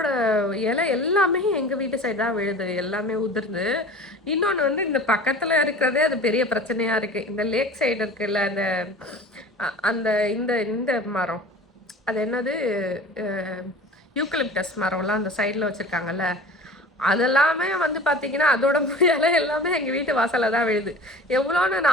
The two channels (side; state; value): both; normal; correlation 0.39